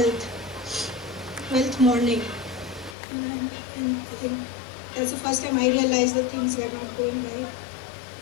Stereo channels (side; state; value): right; drops out; at 3.0 s